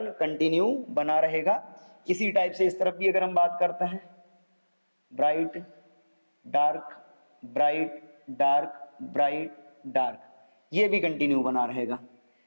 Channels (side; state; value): both; inverted; correlation -1.00